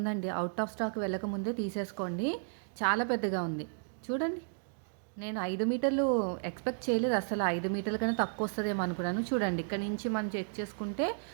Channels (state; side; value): silent; left; digital silence